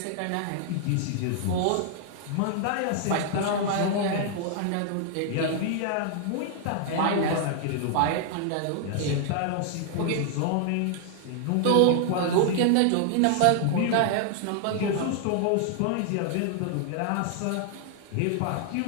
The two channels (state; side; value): different; both; correlation 0.00